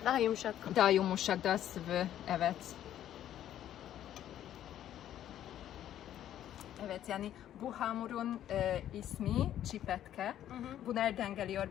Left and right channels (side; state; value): right; quieter; 11.4 dB